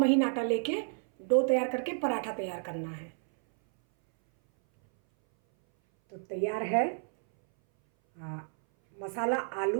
आटा लेके डो तैयार करके पराठा तैयार करना है। तो तैयार है मसाला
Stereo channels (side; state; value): left; silent; 58 dB below the other